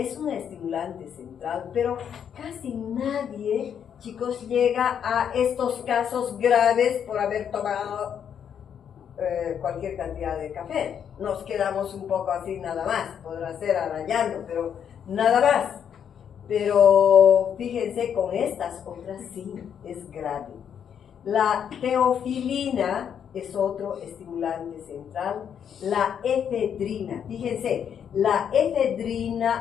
un estimulante central, pero casi nadie, chicos, llega a estos casos graves por haber tomado cualquier cantidad de café. Nos quedamos un poco así nada más, podrá ser arañando, pero nada más. Pero fíjense, con estas otras sí es grave. La teofilina es otro estimulante central. La efedrina, fíjense, la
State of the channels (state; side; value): quieter; right; 8.3 dB